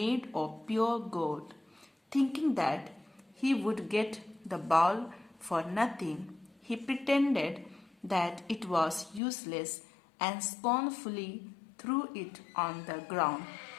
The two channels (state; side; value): drops out; right; at 9.2 s